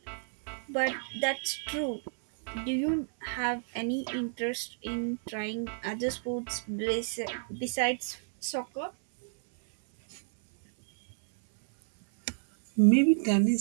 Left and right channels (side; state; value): left; silent; 58 dB below the other